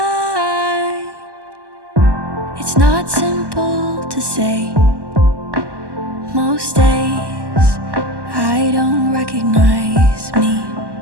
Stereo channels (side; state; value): left; late; 1.1 ms